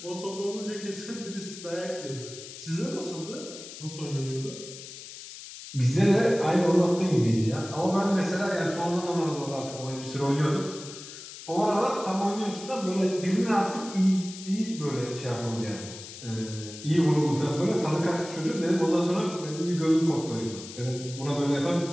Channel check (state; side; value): noise; left; hiss, 13 dB below the sound